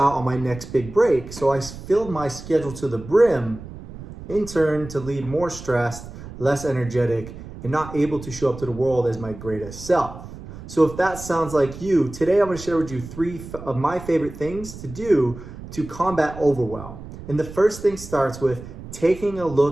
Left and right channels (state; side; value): noise; right; rumble, 13 dB below the sound